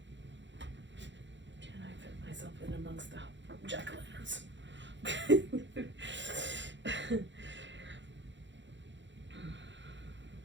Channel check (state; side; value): late; left; 0.53 ms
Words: Amongst the jack-o'-lanterns.